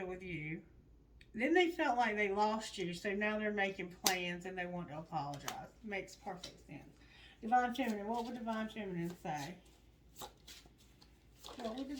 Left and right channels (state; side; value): identical; both; correlation 1.00